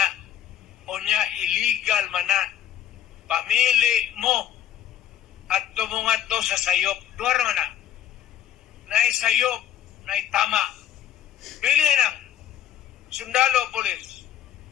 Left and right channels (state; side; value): quieter; right; 10.6 dB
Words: Unya, illegal man na. Pamili mo at tumungat to sa sayop. Duwar man na. Naisayop, naitama. Pili lang. Sundalo, polis.